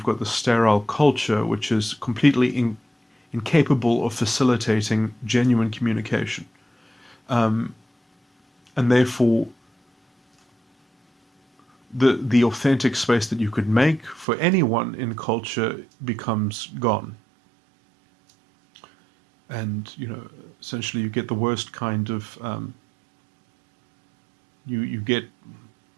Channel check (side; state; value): left; drops out; at 14.2 s